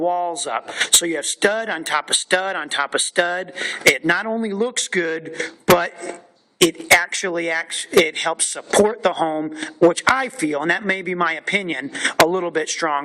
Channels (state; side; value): identical; both; correlation 1.00